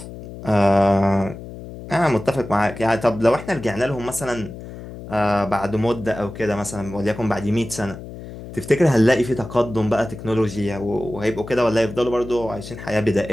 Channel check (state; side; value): noise; left; hum, 13 dB below the sound